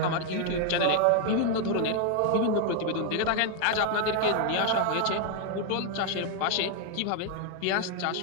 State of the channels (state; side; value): different; both; correlation 0.00